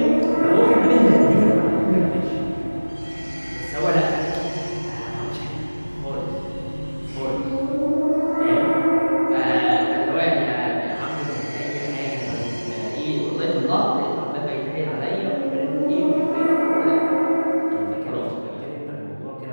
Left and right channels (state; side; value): inverted; both; correlation -1.00